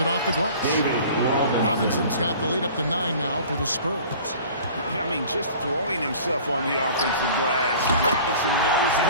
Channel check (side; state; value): both; inverted; correlation -0.45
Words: off the glass. Robinson's got the lead up to 9 now for the Spurs. I mean, just throwing himself on the offensive glass. Robinson knows